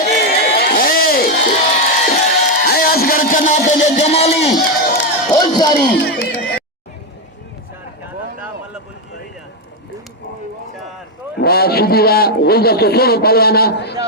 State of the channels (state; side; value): normal; both; correlation 0.05